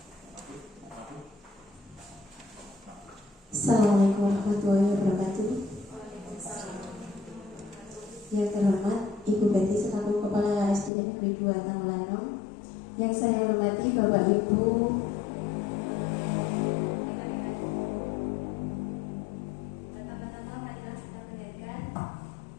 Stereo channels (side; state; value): right; drops out; at 10.9 s